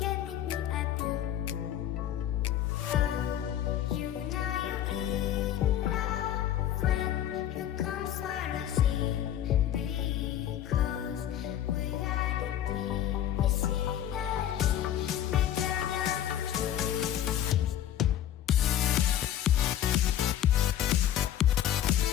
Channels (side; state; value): right; quieter; 11.2 dB